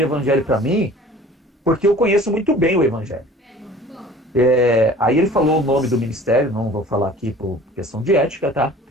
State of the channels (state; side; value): normal; both; correlation 0.46